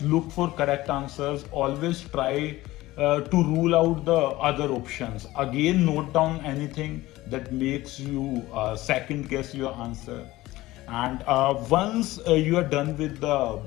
look for correct answers. Always try to rule out the other options. Again, note down anything that makes you second guess your answer. And once you are done with the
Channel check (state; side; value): quieter; right; 17.8 dB